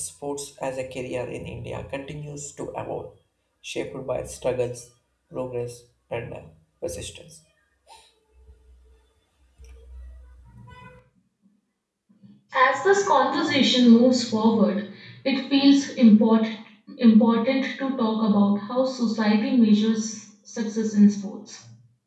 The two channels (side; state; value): both; identical; correlation 1.00